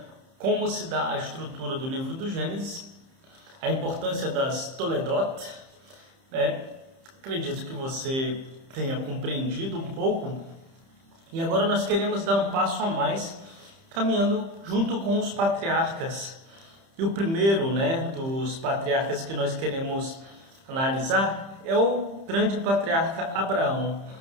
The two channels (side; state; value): left; late; 30 ms